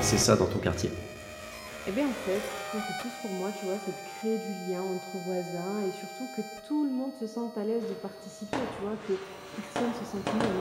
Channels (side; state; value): both; identical; correlation 1.00